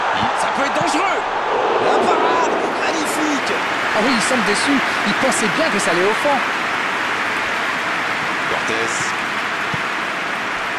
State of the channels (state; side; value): identical; both; correlation 1.00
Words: Ça peut être dangereux. La parade, magnifique. Ah oui, il semble déçu. Il pensait bien que ça allait au fond. Cortés.